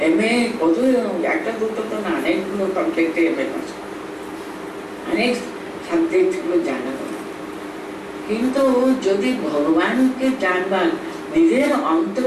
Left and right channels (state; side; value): identical; both; correlation 1.00